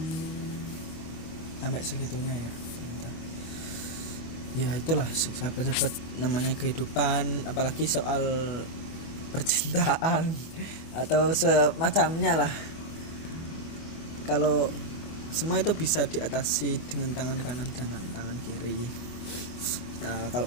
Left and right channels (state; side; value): late; right; 24 ms